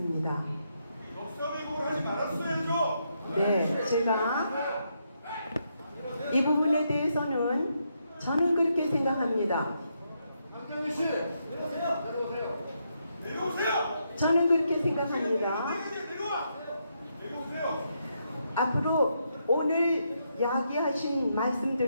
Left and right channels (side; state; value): both; inverted; correlation -0.79